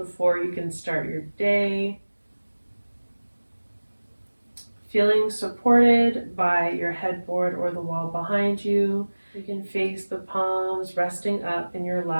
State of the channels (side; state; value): both; inverted; correlation -1.00